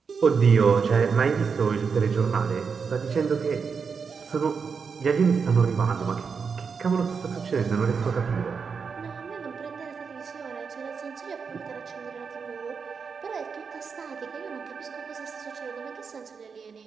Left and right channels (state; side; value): quieter; left; 5.7 dB